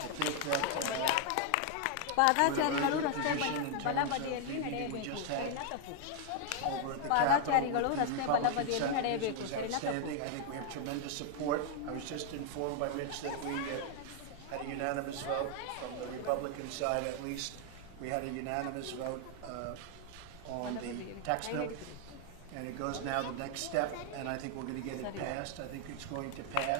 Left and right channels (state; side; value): different; both; correlation 0.00